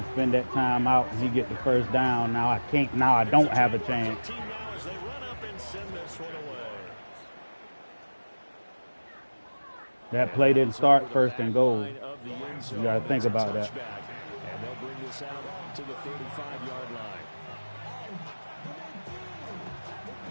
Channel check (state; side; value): inverted; both; correlation -1.00